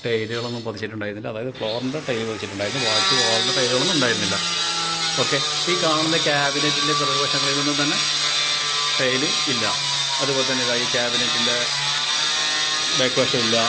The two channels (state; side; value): identical; both; correlation 1.00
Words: ടൈലുകളൊന്നും പതിച്ചിട്ടുണ്ടായിരുന്നില്ല. അതായത് ഫ്ലോറിൻ്റെ ടൈൽ പതിച്ചിട്ടുണ്ടായിരുന്നു, ബാക്കി വാളിൻ്റെ ടൈലുകളൊന്നും ഉണ്ടായിരുന്നില്ല. ഓക്കെ, ഈ കാണുന്ന ക്യാബിനറ്റിൻ്റെ പിറകുവശങ്ങളിൽ നിന്നും തന്നെ ടൈല് ഇല്ല. അതുപോലെ തന്നെ ഈ ക്യാബിനറ്റിൻ്റെ ബാക്ക് വശമില്ല.